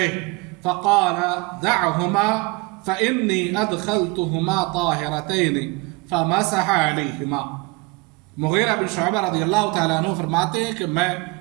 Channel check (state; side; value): quieter; left; 25.8 dB